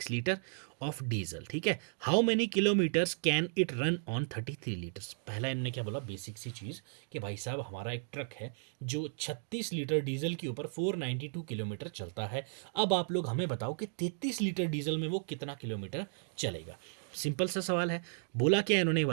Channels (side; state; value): left; silent; digital silence